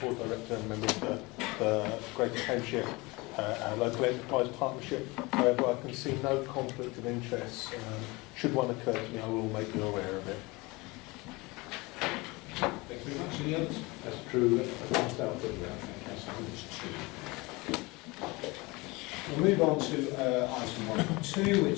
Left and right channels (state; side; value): quieter; right; 24.1 dB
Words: board director and member of the Greater Cambridgeshire Local Enterprise Partnership. However, I can see no conflict of interest. Should one occur to me, I will make you aware of it. Thank you very much. Any others? That's true. We'll move on to item 1.2,